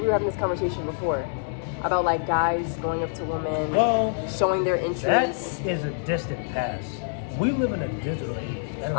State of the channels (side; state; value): right; silent; digital silence